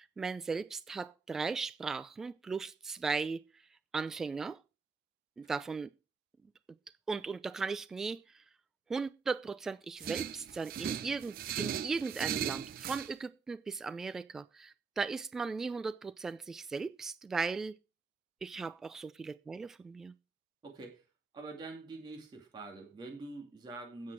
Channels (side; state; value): left; quieter; 4.7 dB